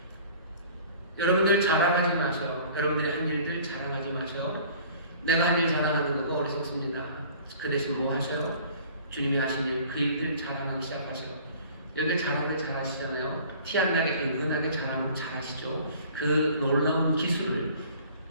여러분들 자랑하지 마셔요. 여러분들이 한 일들 자랑하지 마셔요. 내가 한 일 자랑하는 거고 어리석습니다. 그 대신 뭐 하셔요? 주님이 하신 일, 그 일들 자랑하기 시작하셔요. 여러분들 자랑을 잘하시잖아요. 티 안 나게 은근하게 잘하시죠. 그 놀라운 기술을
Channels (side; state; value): both; inverted; correlation -0.49